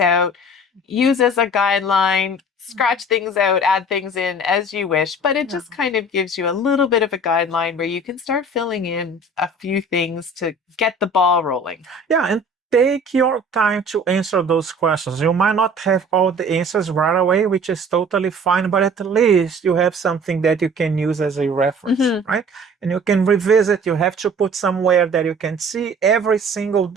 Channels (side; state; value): both; normal; correlation 0.46